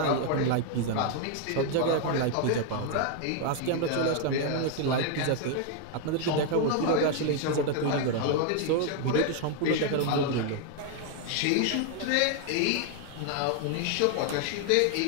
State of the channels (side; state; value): both; different; correlation 0.00